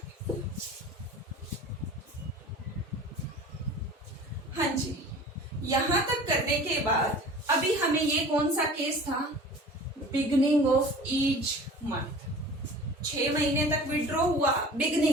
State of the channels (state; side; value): normal; both; correlation 0.42